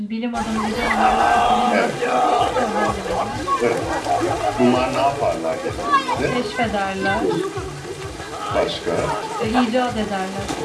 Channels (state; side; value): identical; both; correlation 1.00